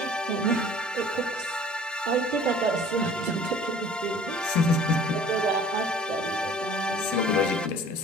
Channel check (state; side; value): normal; both; correlation 0.49